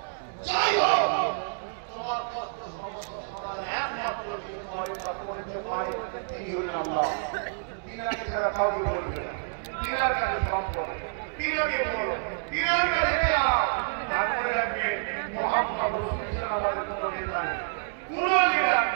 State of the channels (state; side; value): silent; left; digital silence